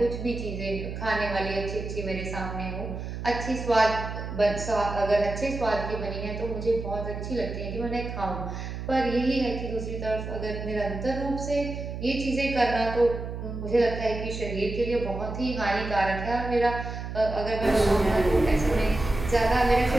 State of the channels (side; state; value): right; noise; hum, 7 dB below the sound